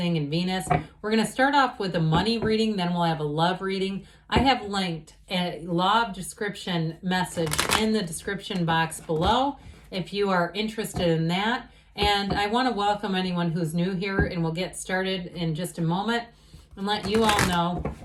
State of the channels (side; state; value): both; identical; correlation 1.00